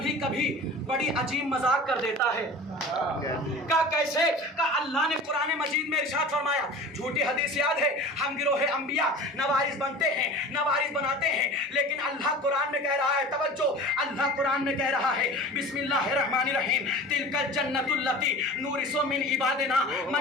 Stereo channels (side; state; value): both; normal; correlation 0.38